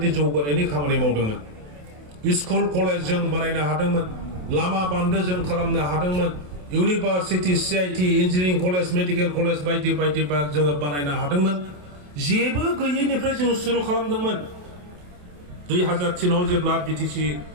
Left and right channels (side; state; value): left; late; 28 ms